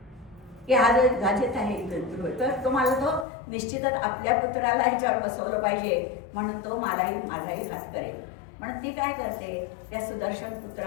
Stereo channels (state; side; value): drops out; right; at 3.2 s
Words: की हा जो गाजेत आहे तर तुम्हाला तो निश्चितच आपल्या पुत्राला ह्याच्यावर बसवलं पाहिजे म्हणून तो माझाही घात करेल. म्हणून ती काय करते त्या सुदर्शन